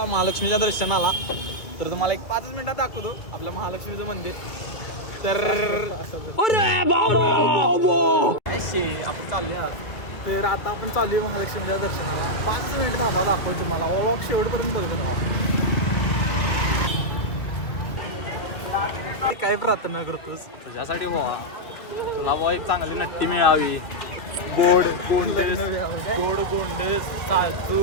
महालक्ष्मीच्या दर्शनाला तर तुम्हाला एक 5 मिनिटात दाखवतो आपल्या महालक्ष्मीचं मंदिर तर आपण चालले आहात तर आता आपण चालू आहे महालक्ष्मीच्या दर्शनाला 5 मिनिट थांबा दाखवतो तुम्हाला व्लॉग शेवटपर्यंत बघतो तुम्हाला काय प्रार्थना करतोस तुझ्यासाठी भावा तुला भावा एक चांगली नट्टी मिळावी गोड गोंडेस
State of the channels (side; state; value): right; late; 2.2 ms